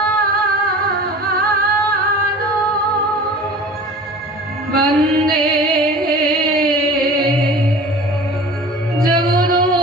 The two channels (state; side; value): normal; both; correlation 0.41